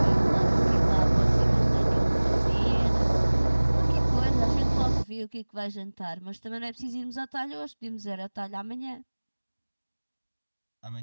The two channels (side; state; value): both; inverted; correlation -1.00